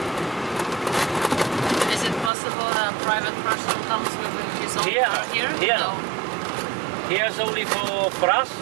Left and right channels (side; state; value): left; drops out; at 2.3 s